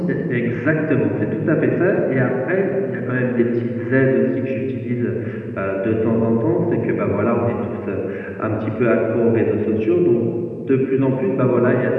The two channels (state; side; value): identical; both; correlation 1.00